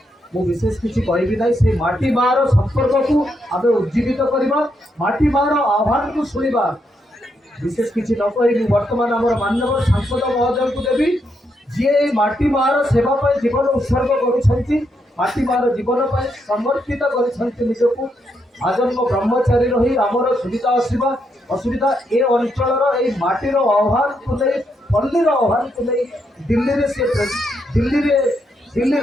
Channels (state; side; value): normal; both; correlation 0.79